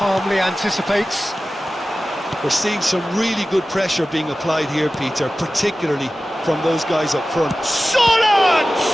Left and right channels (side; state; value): both; normal; correlation 0.95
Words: anticipates. We're seeing some really good pressure being applied here, Peter, particularly from those guys up front. Solid!